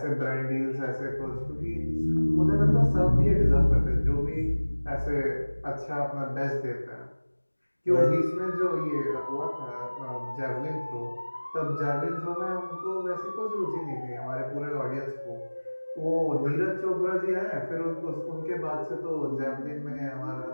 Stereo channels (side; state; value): both; inverted; correlation -1.00